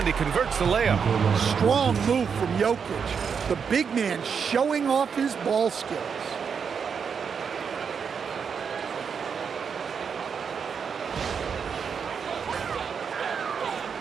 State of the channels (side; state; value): left; quieter; 6.5 dB